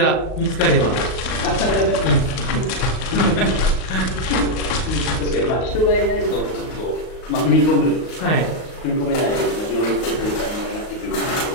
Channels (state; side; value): late; right; 38 ms